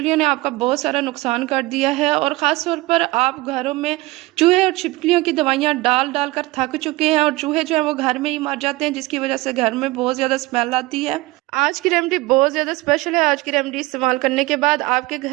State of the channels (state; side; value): quieter; left; 20.9 dB